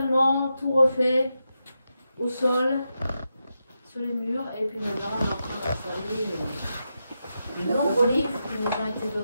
tout refait, au sol, sur les murs, et puis maintenant on est en train d'installer de nombreux livres qui nous ont été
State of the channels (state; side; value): inverted; both; correlation -0.87